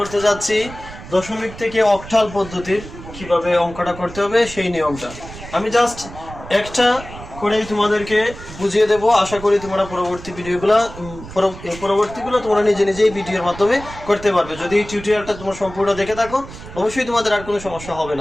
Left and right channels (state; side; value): noise; right; rumble, 14 dB below the sound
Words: যাচ্ছি দশমিক থেকে অক্টাল পদ্ধতির কিভাবে অঙ্কটা করতে হবে সেই নিয়মটা। আমি জাস্ট একটা করেই তোমাদেরকে বুঝিয়ে দেব। আশা করি তোমরা পরবর্তীগুলো তোমরা নিজে নিজেই ভিডিওর মাধ্যমে করতে পারবে। যদি এই টিউটোরিয়ালটা তোমরা সম্পূর্ণ দেখে থাকো অবশ্যই তোমাদের আর কোনো সমস্যা হবে